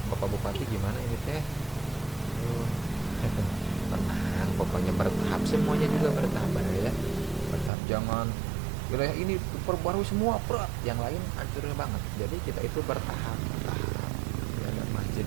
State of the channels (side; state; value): left; drops out; at 7.7 s